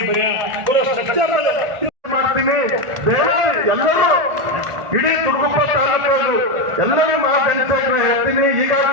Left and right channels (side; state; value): left; late; 1.4 ms